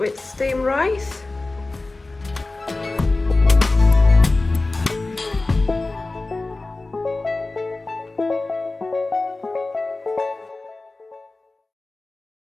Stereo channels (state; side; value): quieter; right; 3.2 dB